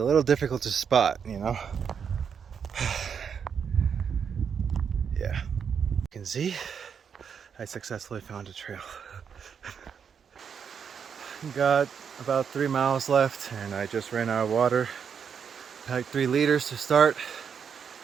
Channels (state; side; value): quieter; left; 7.0 dB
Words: little difficult to spot, you know? Yeah. You can see, I successfully found a trail. Got about 3 miles left, and I just ran out of water. Packed 3 liters to start,